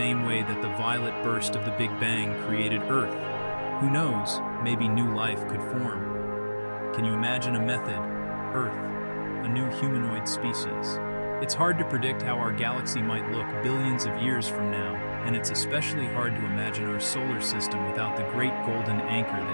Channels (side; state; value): both; inverted; correlation -1.00